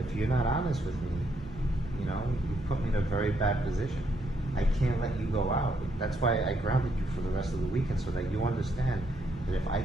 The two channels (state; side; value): normal; both; correlation 0.74